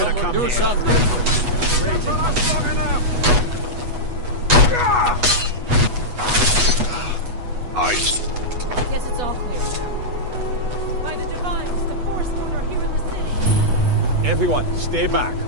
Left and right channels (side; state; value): left; late; 8.2 ms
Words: have come do here. something. I... Guess it's all clear now. By the Divines, the Forsworn are here in the city. Everyone, stay back.